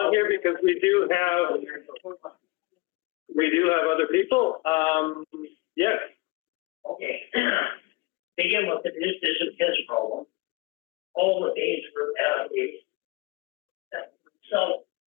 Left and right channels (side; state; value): right; quieter; 24.8 dB